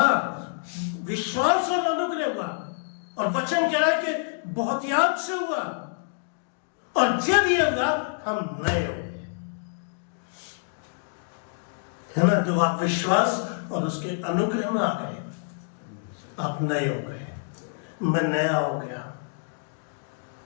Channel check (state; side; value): silent; right; digital silence